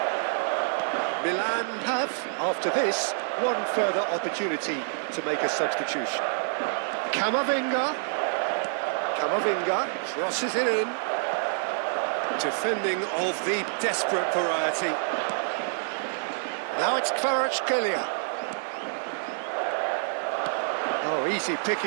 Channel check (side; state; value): left; silent; digital silence